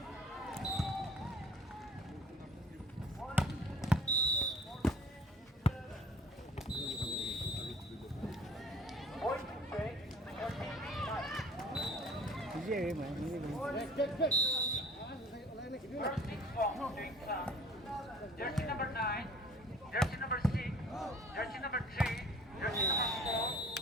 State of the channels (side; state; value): both; normal; correlation 0.51